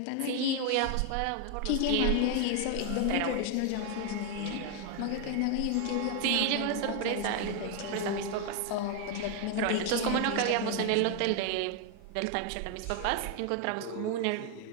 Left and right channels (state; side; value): different; both; correlation 0.01